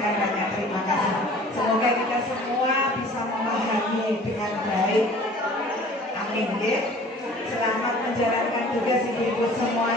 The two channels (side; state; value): both; normal; correlation 0.48